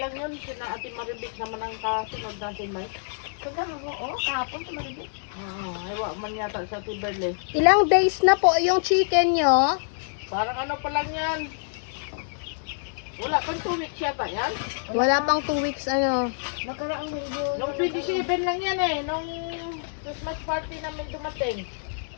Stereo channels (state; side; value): silent; right; digital silence